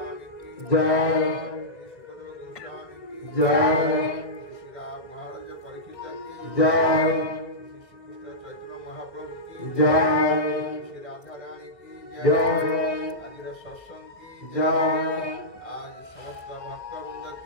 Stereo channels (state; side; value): late; right; 1.4 ms